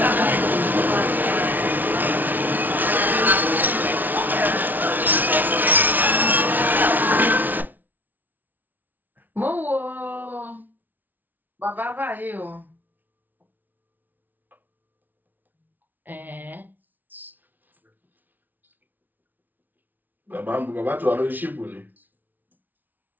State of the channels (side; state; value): left; late; 0.083 ms